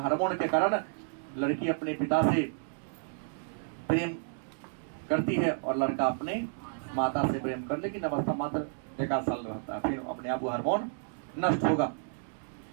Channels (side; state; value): left; silent; digital silence